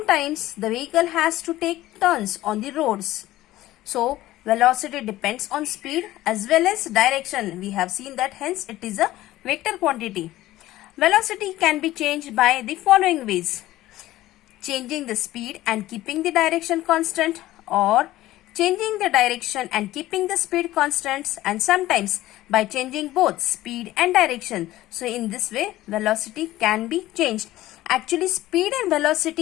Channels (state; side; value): quieter; right; 15.8 dB